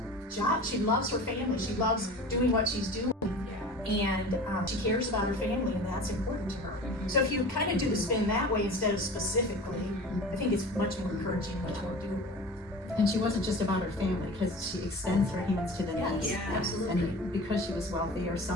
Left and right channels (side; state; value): both; normal; correlation 0.37